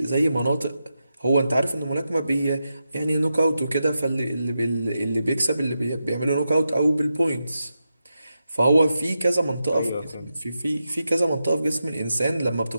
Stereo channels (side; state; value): both; inverted; correlation -0.88